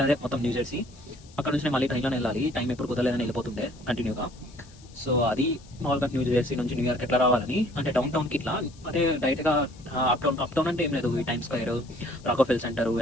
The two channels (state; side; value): noise; left; hiss, 25 dB below the sound